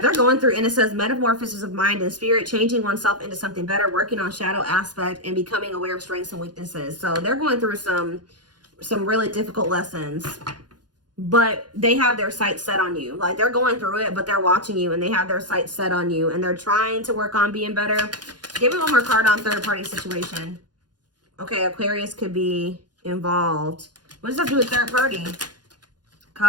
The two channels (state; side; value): late; left; 0.70 ms